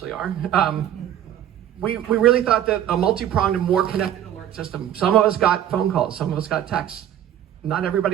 are, we really thought that a multi-pronged and more connected alert system, some of us got phone calls, some of us got texts, not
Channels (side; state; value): left; quieter; 10.8 dB